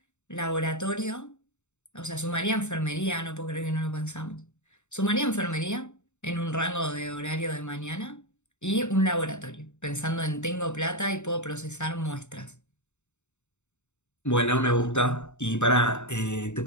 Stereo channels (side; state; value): right; late; 0.83 ms